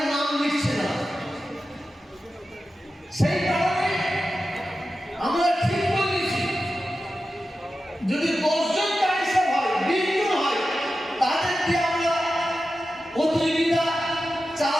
নাম লিখছে না। সেই কারণে আমরা ঠিক বলেছি, যদি 10 জন কারিশা হয়, 20 জন হয়, তাদের দিয়ে আমরা প্রতিযোগিতা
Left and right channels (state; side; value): normal; both; correlation 0.92